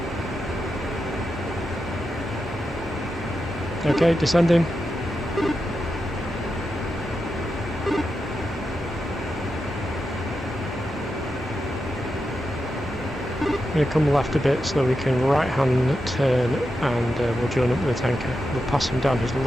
Okay, descending. I'm going to come left a bit so that we can right hand turn and we'll join up with the tanker. We'll pass him down his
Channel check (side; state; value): both; normal; correlation 0.88